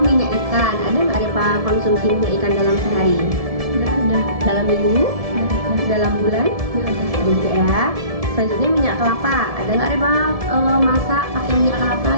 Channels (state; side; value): late; left; 1.7 ms